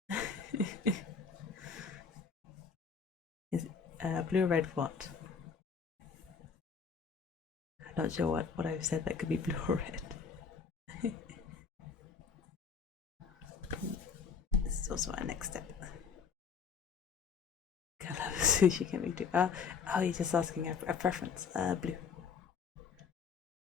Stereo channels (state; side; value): quieter; right; 6.0 dB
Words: Is blue or red what? I'm not sure what I've said that could be blue or red. This is also our next step. Colour of sushi can be too. Oh, you're just asking a preference. Blue.